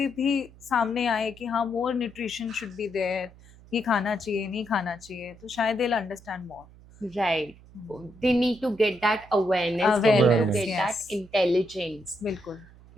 भी सामने आए कि हाँ, मोर न्यूट्रिशन शुड बी देयर, ये खाना चाहिए, नहीं खाना चाहिए, तो शायद they will understand more. Right. They need to get that awareness. They need to Awareness, get yes. that intelligence. बिल्कुल.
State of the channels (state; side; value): noise; right; hum, 23 dB below the sound